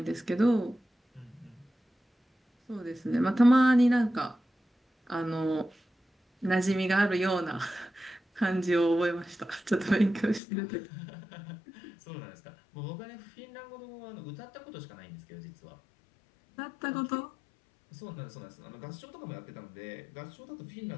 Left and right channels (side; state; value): right; drops out; at 10.4 s